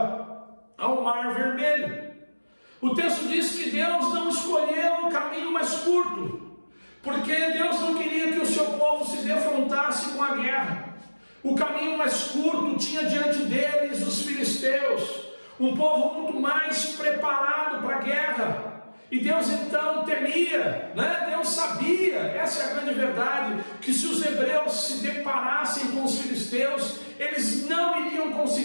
ao Mar Vermelho. O texto diz que Deus não escolheu o caminho mais curto, porque Deus não queria que o seu povo se defrontasse com a guerra. O caminho mais curto tinha diante deles os filisteus, um povo muito mais preparado para a guerra. E Deus então temia, Deus sabia, essa é a grande verdade, que se os hebreus se deparassem com os filisteus, eles não iriam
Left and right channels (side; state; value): both; inverted; correlation -1.00